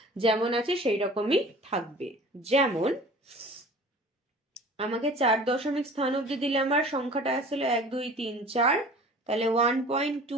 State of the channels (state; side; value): normal; both; correlation 0.44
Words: যেমন আছে সেই রকমই থাকবে। যেমন আমাকে 4 দশমিক স্থান অবধি দিলে আমার সংখ্যাটা আসছিল 1 2 3 4, তাহলে